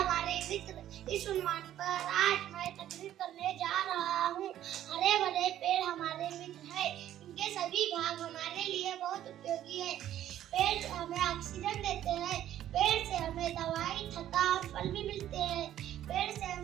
मित्र, इस उन्वान पर आज मैं तकरीर करने जा रहा हूँ। हरे भरे पेड़ हमारे मित्र है। इनके सभी भाग हमारे लिए बहुत उपयोगी है। पेड़ हमें ऑक्सीजन देते हैं। पेड़ से हमें दवाई, छत्ता और फल भी मिलते हैं। पेड़ से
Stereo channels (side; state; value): left; quieter; 12.0 dB